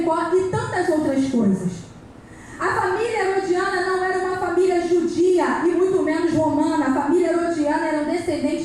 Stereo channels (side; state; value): both; identical; correlation 1.00